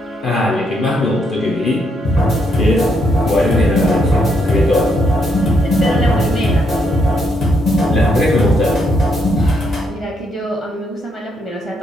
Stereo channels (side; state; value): both; normal; correlation 0.75